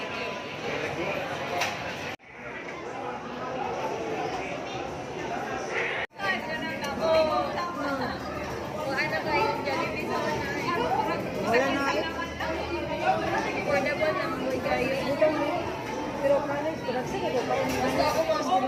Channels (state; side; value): identical; both; correlation 1.00